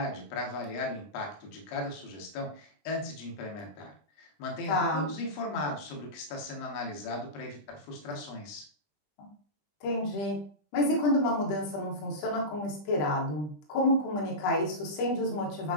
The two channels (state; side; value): late; right; 20 ms